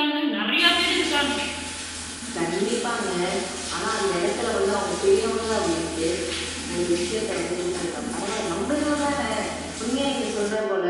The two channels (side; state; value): both; identical; correlation 1.00